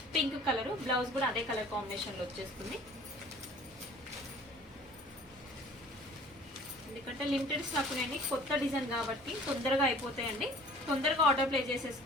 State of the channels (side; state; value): both; normal; correlation 0.49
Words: పింక్ కలర్, బ్లౌజ్ కూడా అదే కలర్ కాంబినేషన్ లో వచ్చేస్తుంది. ఎందుకంటే లిమిటెడ్ స్టాక్ అండి, కొత్త డిజైన్ కాబట్టి తొందరగా అయిపోతాయండి. తొందరగా ఆర్డర్ ప్లేస్